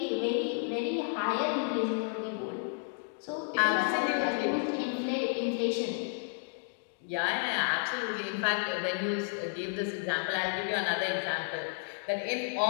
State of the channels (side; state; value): right; silent; 57 dB below the other